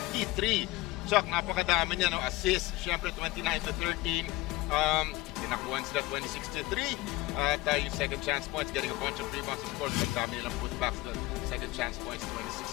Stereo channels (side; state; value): right; quieter; 19.3 dB